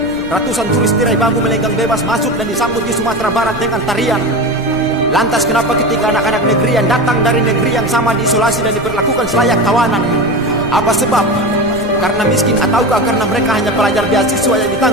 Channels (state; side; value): noise; right; rumble, 15 dB below the sound